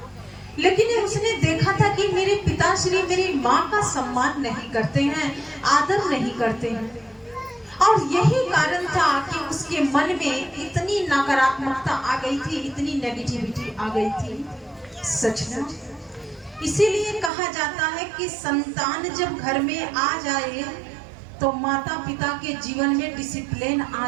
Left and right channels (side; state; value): left; drops out; at 17.3 s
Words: लेकिन उसने देखा था कि मेरे पिताश्री मेरी माँ का सम्मान नहीं करते हैं, आदर नहीं करते हैं। और यही कारण था कि उसके मन में इतनी नकारात्मकता आ गई थी, इतनी नेगेटिविटी आ गई थी। सच में इसीलिए कहा जाता है कि संतान जब घर में आ जाए तो माता पिता के जीवन में डिसिप्लिन